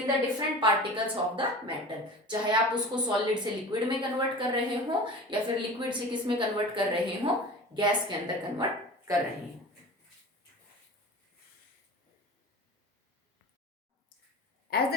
the different particles of the matter. चाहे आप उसको सॉलिड से लिक्विड में कन्वर्ट कर रहे हो, या फिर लिक्विड से किस में कन्वर्ट कर रहे हो, गैस के अंदर कन्वर्ट कर रहे हैं। As the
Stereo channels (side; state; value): both; normal; correlation 0.36